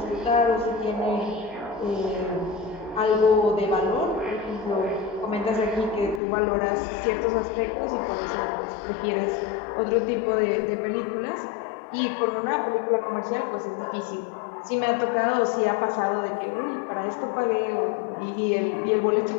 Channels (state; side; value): drops out; right; at 6.2 s